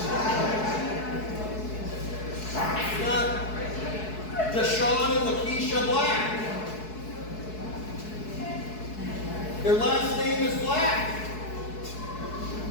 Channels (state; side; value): late; right; 4.7 ms